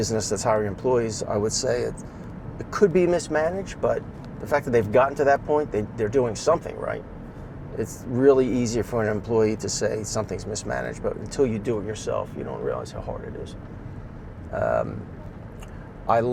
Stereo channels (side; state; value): both; identical; correlation 1.00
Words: that's hiring employees, I would say it could be mismanaged, but the fact that they've gotten to that point, they're doing something right. It's really easier for an employee to say something's mismanaged, but until you do it yourself, you don't realize how hard it is. I